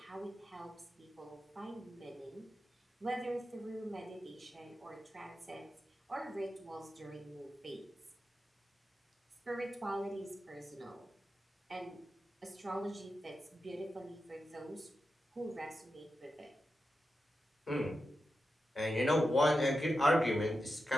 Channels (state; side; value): normal; both; correlation 0.90